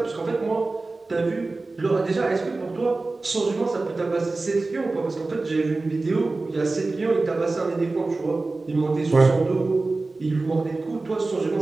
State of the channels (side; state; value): left; quieter; 3.4 dB